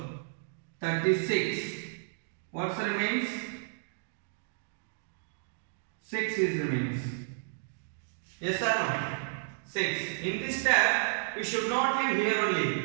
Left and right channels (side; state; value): left; silent; digital silence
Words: 36. What remains? 6 is remains. Yes or no? 6. In this step, we should not leave here